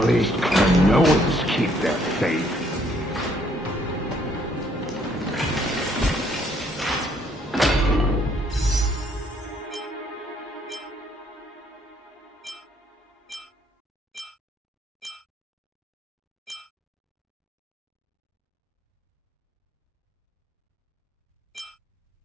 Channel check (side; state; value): both; normal; correlation 0.67